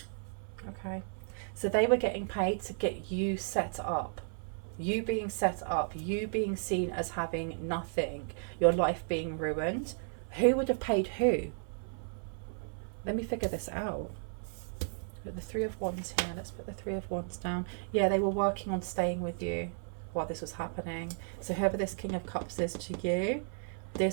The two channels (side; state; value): left; silent; 55 dB below the other